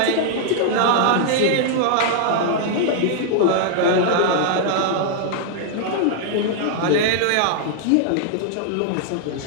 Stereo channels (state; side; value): different; both; correlation -0.01